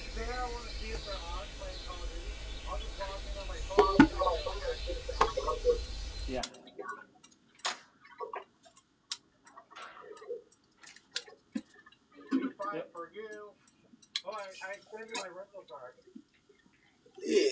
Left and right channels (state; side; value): identical; both; correlation 1.00